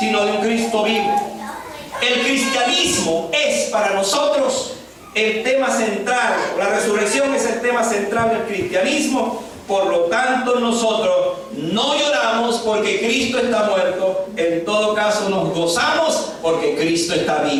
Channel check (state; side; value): identical; both; correlation 1.00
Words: de un Cristo vivo. El cristianismo es para nosotros el tema central. La resurrección es el tema central del cristianismo. Por lo tanto, nosotros no lloramos porque Cristo está muerto. En todo caso, nos gozamos porque Cristo está